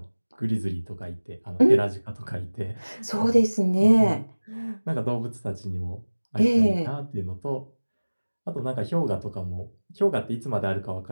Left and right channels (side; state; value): both; inverted; correlation -1.00